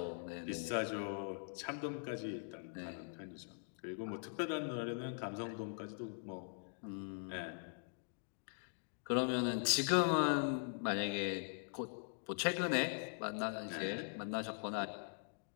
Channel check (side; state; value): right; silent; digital silence